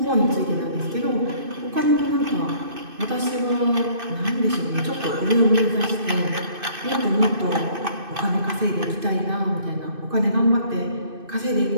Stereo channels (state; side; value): late; left; 2.6 ms